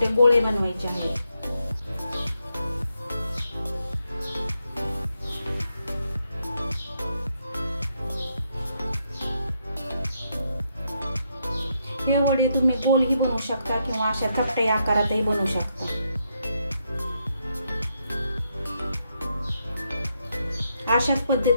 गोळे बनवायचे आहेत। हे वडे तुम्ही गोलही बनवू शकता किंवा अशा चपट्या आकारातही बनवू शकता। अशाच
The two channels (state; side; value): inverted; both; correlation -0.79